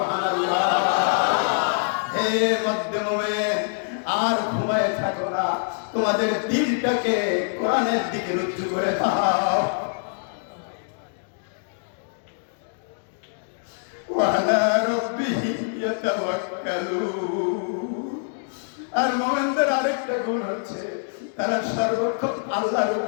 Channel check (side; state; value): right; silent; digital silence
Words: হে মধ্যে মুমিন, আর ঘুমায় থাকো না, তোমাদের দিলটাকে কোরআনের দিকে রুজু করে দাও। ওয়ালা রাব্বিহিম ইয়াতাওয়াক্কালুন, আর মুমিনদের আরেকটা গুণ হচ্ছে তারা সর্বক্ষণ আল্লাহর